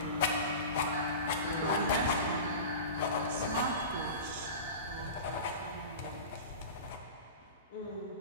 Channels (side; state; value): both; inverted; correlation -0.31